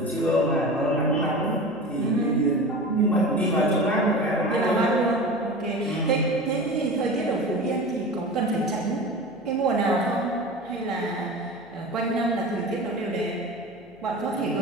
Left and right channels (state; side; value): noise; left; hum, 27 dB below the sound